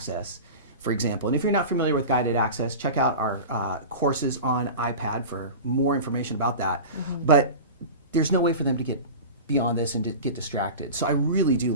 for example, and if you're not familiar with guided access, check out our courses on iPad for more information about that. But there's no way for them to get beyond this and to get distracted. So I really do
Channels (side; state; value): both; inverted; correlation -0.31